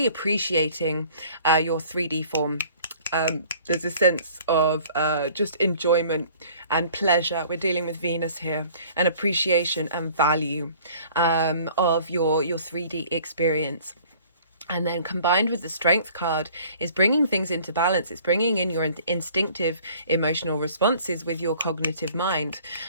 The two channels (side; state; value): both; inverted; correlation -0.52